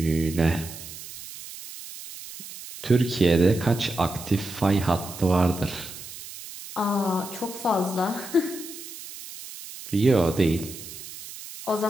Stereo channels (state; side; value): noise; right; hiss, 13 dB below the sound